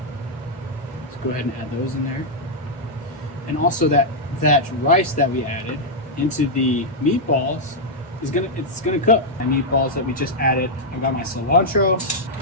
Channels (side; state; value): both; normal; correlation -0.05